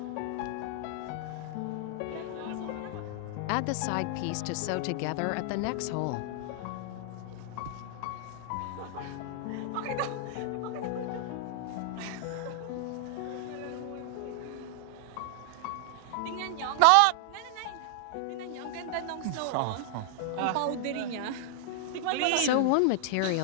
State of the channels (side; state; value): both; different; correlation -0.01